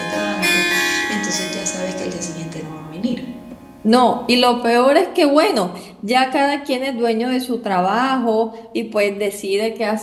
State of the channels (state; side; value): identical; both; correlation 1.00